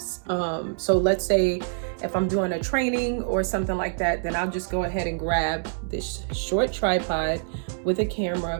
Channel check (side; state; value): left; silent; 61 dB below the other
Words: So let's say if I'm doing a training or something like that, then I'll just go ahead and grab this short tripod with a